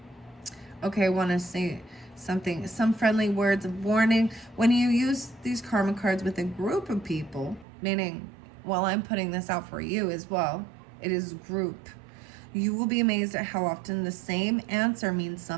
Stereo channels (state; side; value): drops out; left; at 7.7 s